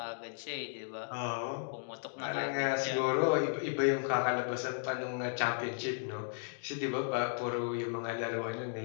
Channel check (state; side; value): silent; right; digital silence